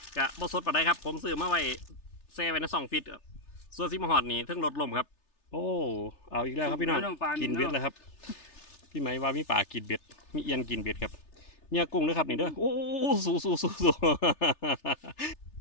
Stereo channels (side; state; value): right; late; 3.3 ms